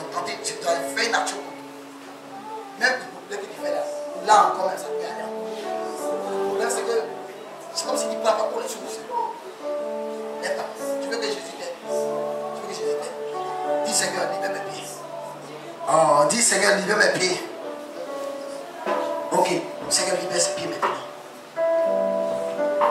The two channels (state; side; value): identical; both; correlation 1.00